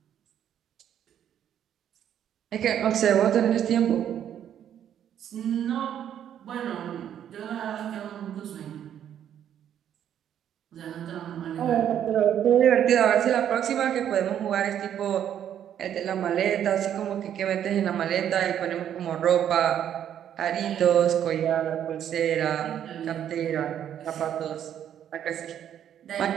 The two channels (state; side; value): quieter; left; 9.9 dB